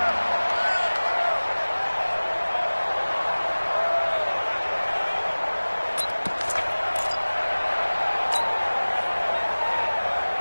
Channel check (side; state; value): both; inverted; correlation -1.00